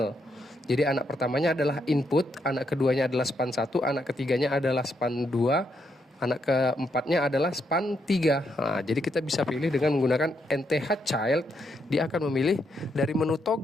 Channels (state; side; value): normal; both; correlation 0.78